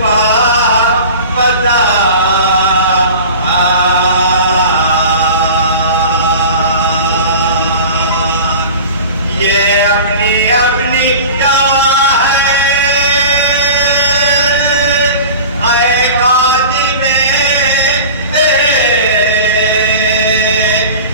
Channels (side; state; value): both; inverted; correlation -0.37